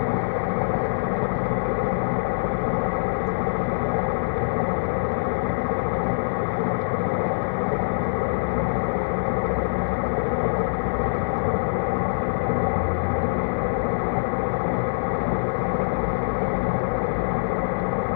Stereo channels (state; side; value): silent; right; digital silence